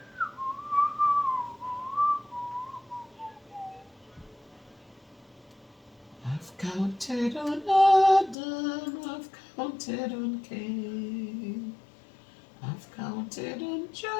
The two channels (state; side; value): drops out; right; at 8.3 s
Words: I've counted on Adam, I've counted on Cain, I've counted on